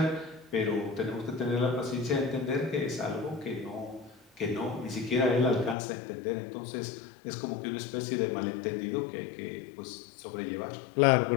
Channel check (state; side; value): drops out; right; at 5.8 s